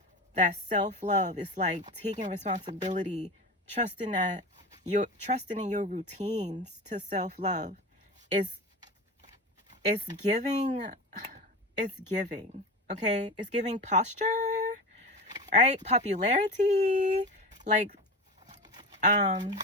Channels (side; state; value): both; normal; correlation 0.27